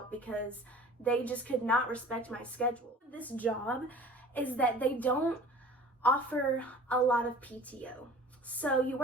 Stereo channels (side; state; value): both; normal; correlation 0.45